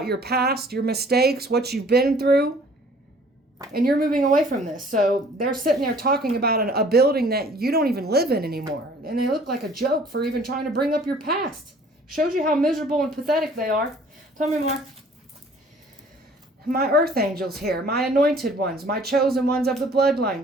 your past, your mistakes, what you've been through. And you're moving away from this. So they're sitting there talking about a building that you don't even live in anymore. And they look like a joke for even trying to bring up your past. Shows you how miserable and pathetic they are. Tell me more. My earth angels here, my anointed ones, my chosen ones of the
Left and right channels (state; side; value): normal; both; correlation 0.54